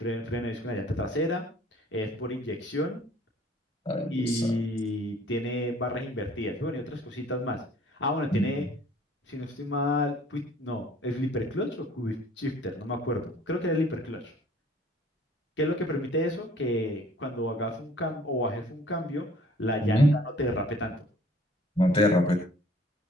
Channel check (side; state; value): both; normal; correlation 0.54